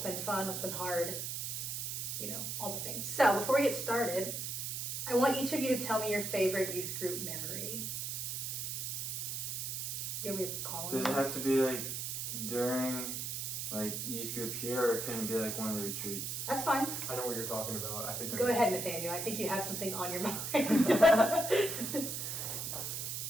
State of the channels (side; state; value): right; noise; hiss, 3 dB below the sound